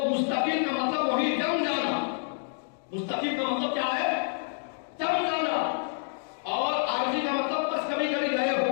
مستقل کا مطلب وہی جم جانا. مستقل کا مطلب کیا ہے؟ جم جانا. اور عارضی کا مطلب بس کبھی کبھی گئے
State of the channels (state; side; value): silent; right; digital silence